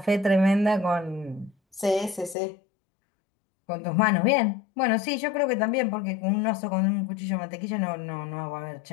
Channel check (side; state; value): right; drops out; at 2.4 s